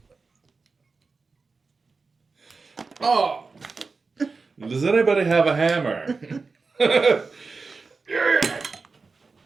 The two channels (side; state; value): left; quieter; 4.3 dB